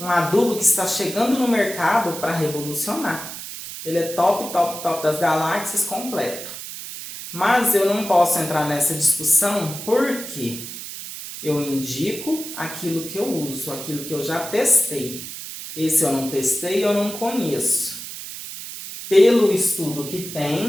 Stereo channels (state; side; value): noise; right; hiss, 10 dB below the sound